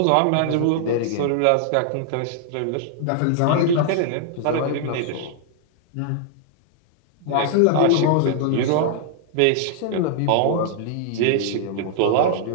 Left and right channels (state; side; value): different; both; correlation -0.01